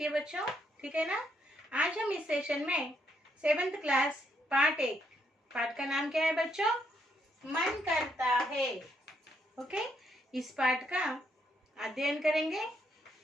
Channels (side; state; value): both; normal; correlation 0.75